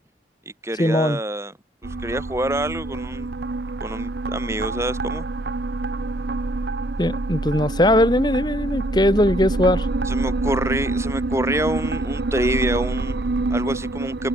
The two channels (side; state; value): both; normal; correlation 0.65